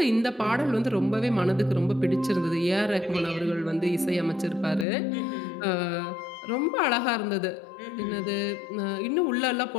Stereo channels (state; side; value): drops out; right; at 4.9 s